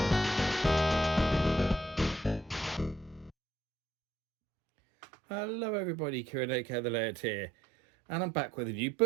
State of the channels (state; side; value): drops out; left; at 3.3 s